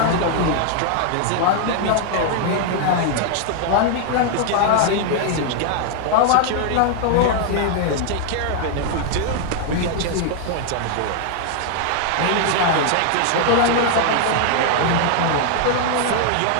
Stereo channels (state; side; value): different; both; correlation 0.00